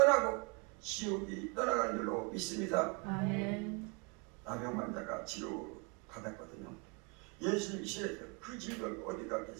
지옥이 떠나가는 줄로 믿습니다. 아멘. 나병 환자가 치료 받았거든요. 예수님이 시에서 그 질병이 어디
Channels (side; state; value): left; quieter; 32.8 dB